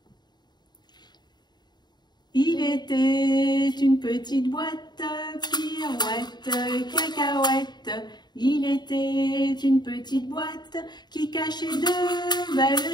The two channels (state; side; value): late; right; 0.21 ms